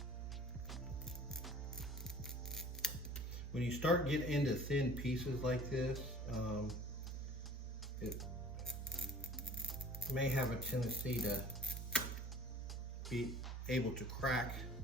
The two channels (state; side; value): normal; both; correlation 0.47